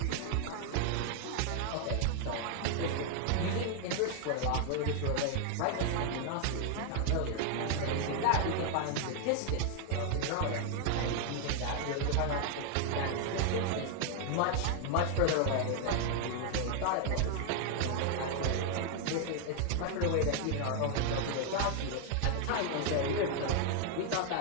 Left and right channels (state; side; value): different; both; correlation 0.00